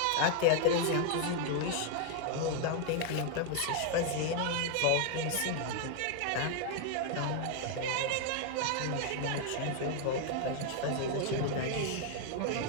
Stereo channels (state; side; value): different; both; correlation 0.00